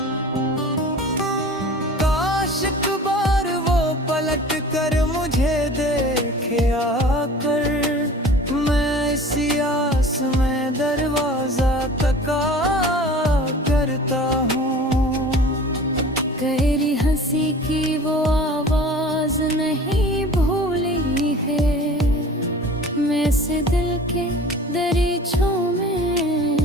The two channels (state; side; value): normal; both; correlation 0.42